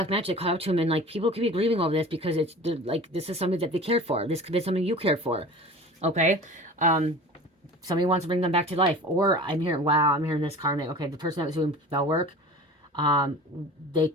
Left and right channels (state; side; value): normal; both; correlation 0.39